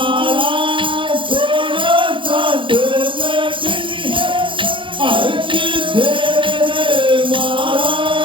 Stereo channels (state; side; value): late; left; 0.25 ms